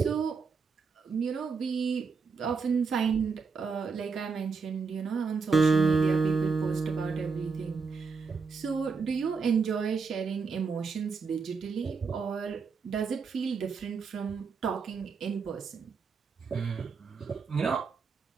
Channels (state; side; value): quieter; left; 5.0 dB